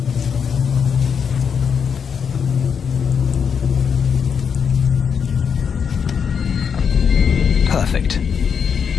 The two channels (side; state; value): right; quieter; 6.8 dB